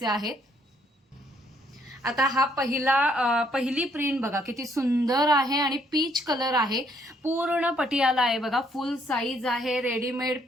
आहेत। आता हा पहिली प्रिंट बघा किती सुंदर आहे आणि पीच कलर आहे। पूर्ण पटियाला आहे बघा, फुल साईज आहे। रेडीमेड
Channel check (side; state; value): both; normal; correlation 0.68